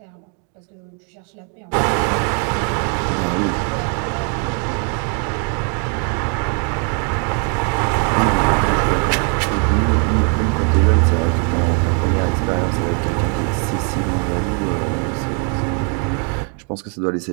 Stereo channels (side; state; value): left; quieter; 39.5 dB